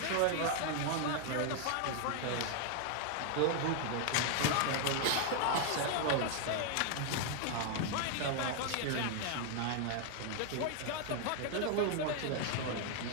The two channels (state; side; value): different; both; correlation 0.00